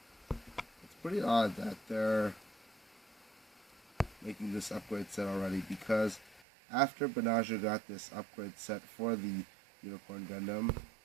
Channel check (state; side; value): drops out; left; at 6.5 s